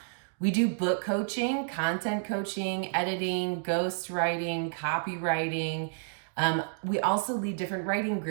We do book coaching, content coaching, editing, ghostwriting, copywriting. We also lead different writing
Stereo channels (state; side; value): silent; left; digital silence